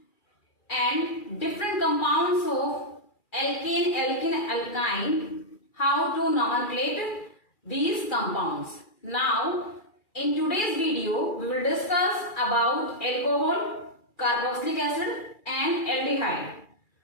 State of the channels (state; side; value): late; right; 2.4 ms